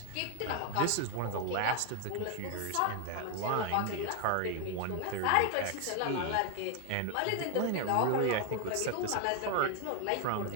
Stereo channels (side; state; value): both; different; correlation 0.01